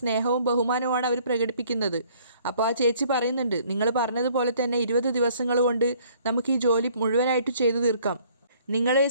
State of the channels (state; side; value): inverted; both; correlation -0.59